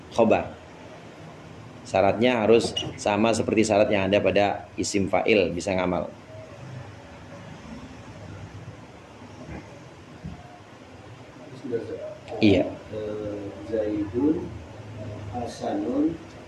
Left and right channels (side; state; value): both; identical; correlation 1.00